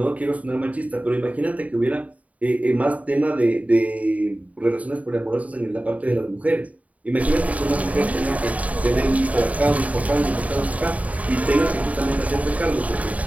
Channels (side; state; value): left; late; 0.069 ms